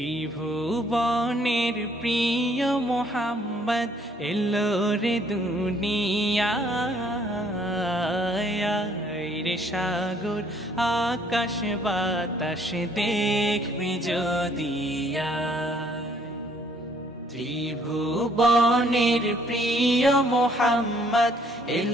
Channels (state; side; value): normal; both; correlation 0.64